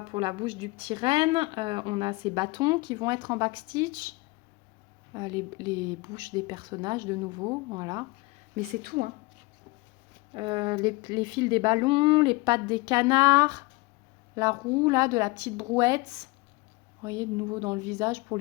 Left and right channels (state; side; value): quieter; right; 23.8 dB